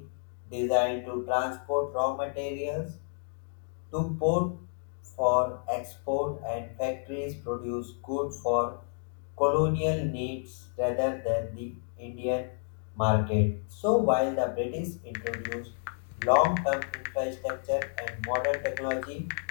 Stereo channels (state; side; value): silent; right; digital silence